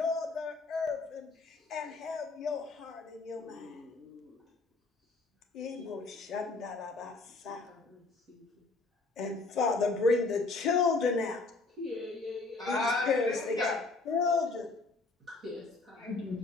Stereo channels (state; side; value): quieter; right; 3.7 dB